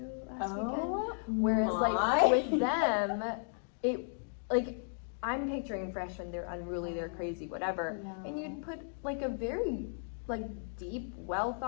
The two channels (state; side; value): silent; right; digital silence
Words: last weekend. Whereas like with them, it, like, I'm picturing freshmen, they're unruly, they're crazy, whatever. And you'd put like a very like deep, well